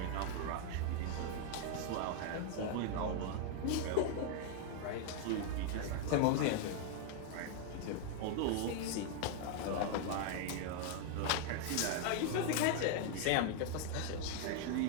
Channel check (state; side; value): different; both; correlation 0.00